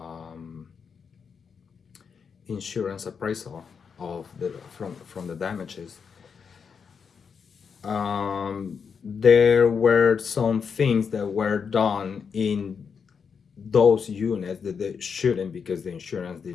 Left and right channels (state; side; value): quieter; right; 6.2 dB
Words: insurance appraisal of from the damages. There were some things that were done in those units that they shouldn't, because the insurance